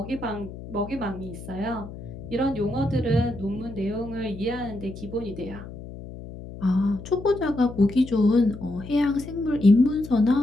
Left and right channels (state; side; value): noise; left; hum, 13 dB below the sound